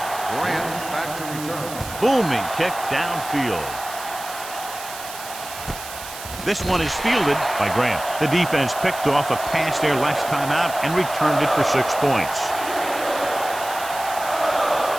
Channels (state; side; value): noise; right; hiss, 12 dB below the sound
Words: Grant back to return. Booming kick downfield. This one is fielded by Grant. The defense picked off a pass there last time out and returned it for 6 points.